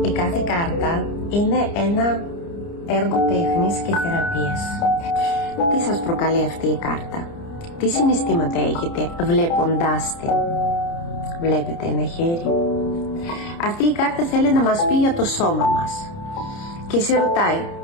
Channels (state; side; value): late; right; 30 ms